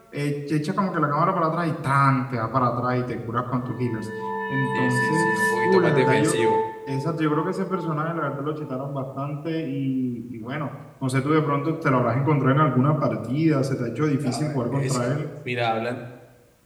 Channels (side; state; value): both; identical; correlation 1.00